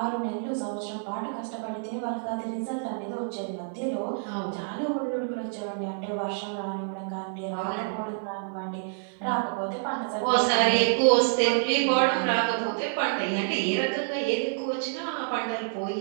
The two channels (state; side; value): silent; left; 56 dB below the other